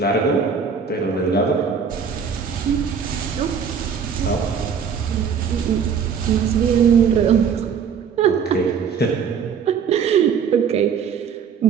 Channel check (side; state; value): left; quieter; 6.8 dB